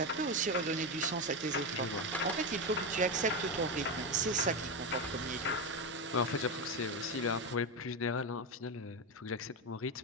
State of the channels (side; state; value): both; normal; correlation 0.13